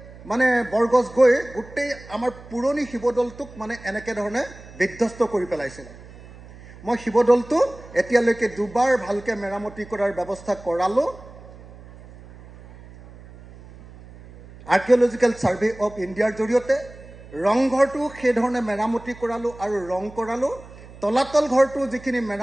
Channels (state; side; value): noise; right; hum, 19 dB below the sound